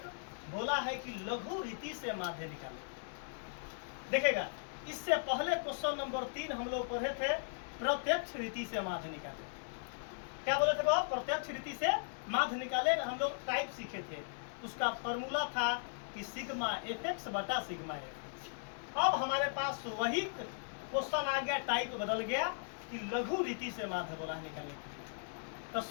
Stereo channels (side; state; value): right; silent; 53 dB below the other